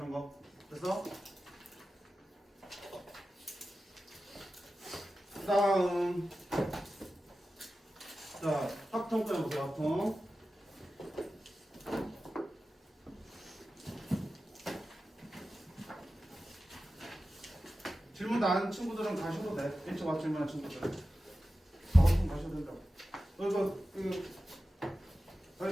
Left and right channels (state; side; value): normal; both; correlation 0.94